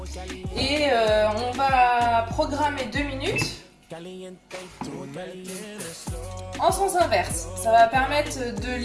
Et on va programmer 2 minutes en sens inverse. Ça va permettre de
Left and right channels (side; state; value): both; identical; correlation 1.00